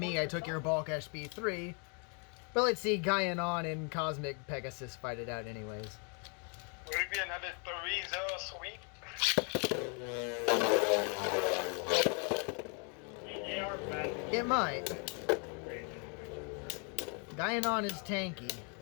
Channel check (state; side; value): quieter; right; 38.0 dB